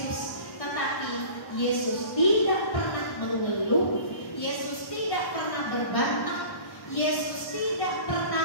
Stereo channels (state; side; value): late; right; 1.1 ms